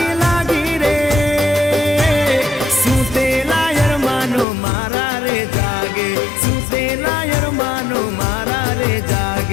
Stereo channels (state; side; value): drops out; right; at 4.5 s